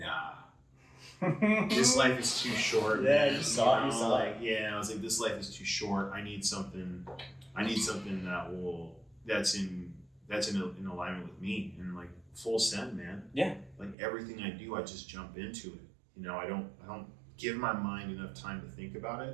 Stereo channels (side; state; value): left; drops out; at 14.0 s